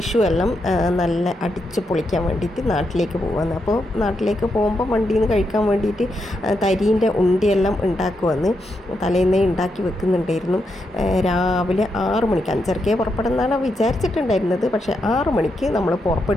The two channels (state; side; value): normal; both; correlation 0.83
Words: എല്ലാം നല്ല അടിച്ച് പൊളിക്കാൻ വേണ്ടിയിട്ട് നാട്ടിലേക്ക് പോകാമെന്ന്. അപ്പോൾ നാട്ടിലേക്ക് പോകുമ്പോൾ വണ്ടിയിൽ നിന്ന് കഴിക്കാൻ വേണ്ടിയിട്ട് തരീൻ്റെ ഉണ്ടിയെല്ലാം ഉണ്ടാക്കുമെന്ന് തലേന്നേ ഉണ്ടാക്കി വെക്കുന്നുണ്ടായിരുന്നു. രാവിലെ 6 മണിക്ക്, 5:30 പുറപ്പെടുന്നതാണ് വിചാരിച്ചിട്ടുണ്ടായിരുന്നത്. പക്ഷേ 6 മണിക്ക് നമ്മൾ